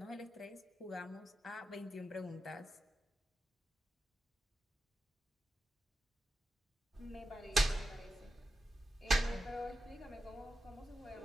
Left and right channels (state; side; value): normal; both; correlation 0.89